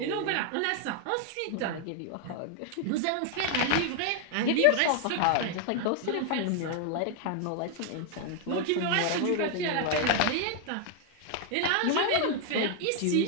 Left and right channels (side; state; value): both; different; correlation 0.00